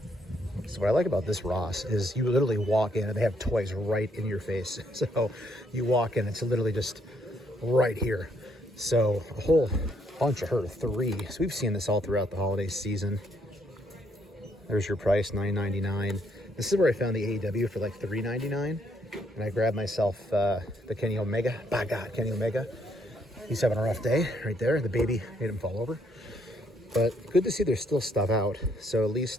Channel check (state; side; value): normal; both; correlation 0.71